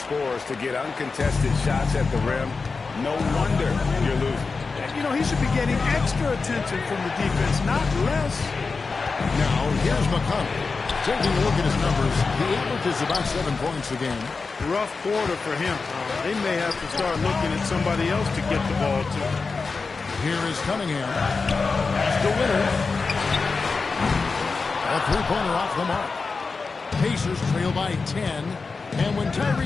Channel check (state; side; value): quieter; right; 4.4 dB